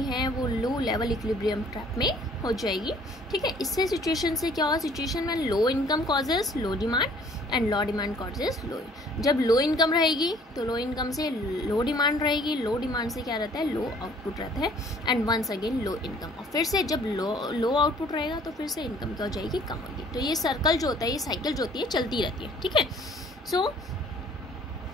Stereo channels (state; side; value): normal; both; correlation 0.56